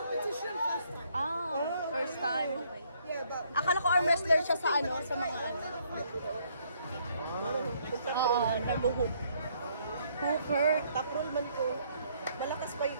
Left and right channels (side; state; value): both; inverted; correlation -0.68